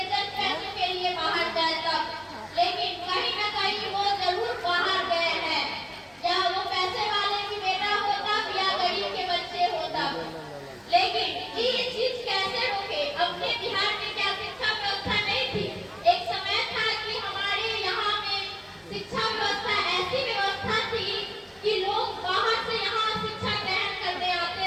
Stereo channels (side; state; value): both; identical; correlation 1.00